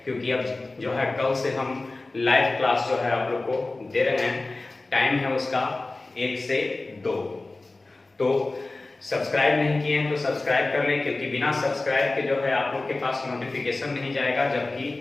क्योंकि अब जो है कल से हम लाइव क्लास जो है आप लोग को दे रहे हैं। टाइम है उसका 1 से 2। तो सब्सक्राइब नहीं किए हैं तो सब्सक्राइब कर लें, क्योंकि बिना सब्सक्राइब के जो है आप लोग के पास नोटिफिकेशन नहीं जाएगा जबकि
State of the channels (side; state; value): right; quieter; 3.2 dB